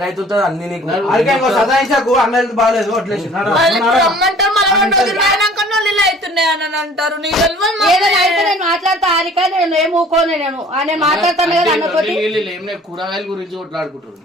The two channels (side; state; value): both; normal; correlation 0.51